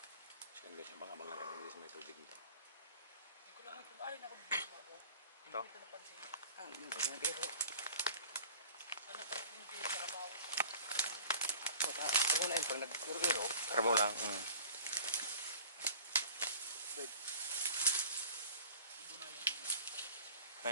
So ayun guys, abang-abang lang tayo dito sa may tubig nito. Hindi ko lang ito. Ay, nakabibig mo ako. Ito? Hindi ko napansin. Hindi ba nga biro? Ano pa yung hindi sa kabaw? Ako na yun pag nag-iro-iro. Karabaw lang.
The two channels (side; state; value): both; inverted; correlation -0.44